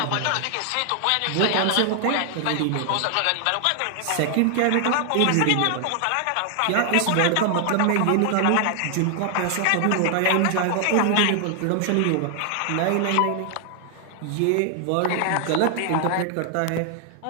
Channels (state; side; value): different; both; correlation 0.00